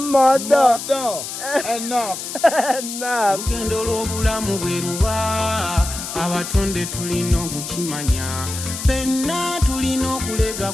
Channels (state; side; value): noise; left; hiss, 7 dB below the sound